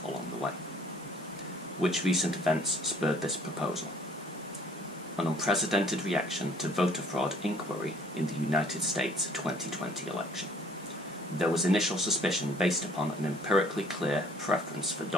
along the way. Which recent events spurred this proposal? An unprecedented reaction to voter fraud inquiry in the United States 2020 election. There was initial suspicion based upon an empirically clear preference for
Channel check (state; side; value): normal; both; correlation 0.57